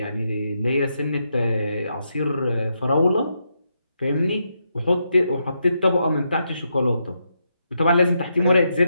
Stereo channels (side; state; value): both; inverted; correlation -0.82